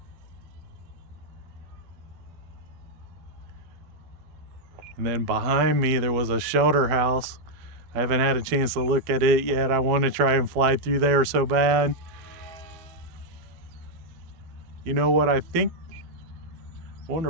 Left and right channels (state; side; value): late; left; 12 ms